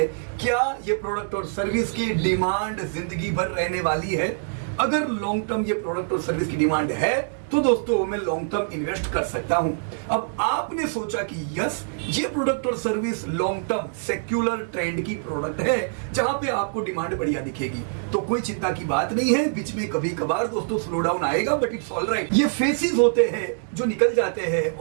क्या ये प्रोडक्ट और सर्विस की डिमांड जिंदगी भर रहने वाली है। अगर लॉन्ग टर्म ये प्रोडक्ट और सर्विस की डिमांड है तो दोस्तों मैं लॉन्ग टर्म इन्वेस्ट कर सकता हूं। अब आपने सोचा कि यस, ये प्रोडक्ट और service long term secular trend की प्रोडक्ट है जहां पे आपको डिमांड बढ़िया दिखेगी, तो कोई चिंता की बात नहीं है। बीच में कभी कभार दोस्तों स्लो डाउन आएगा, बट इट्स ऑल राइट। ये फेसेस होते हैं जो निकल जाते हैं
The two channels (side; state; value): left; silent; digital silence